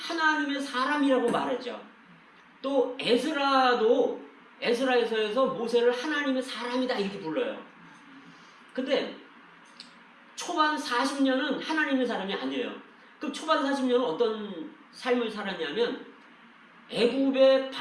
사람이라고 말했죠. 또 에스라에서 모세를 하나님의 사람이다 이렇게 불러요. 근데 초반 40년은 하나님의 사람이 아니에요. 그 초반 40년은 어떤 삶을 살았냐면 애굽의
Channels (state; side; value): identical; both; correlation 1.00